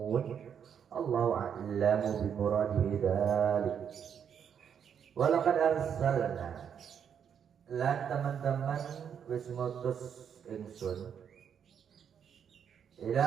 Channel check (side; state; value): left; quieter; 8.0 dB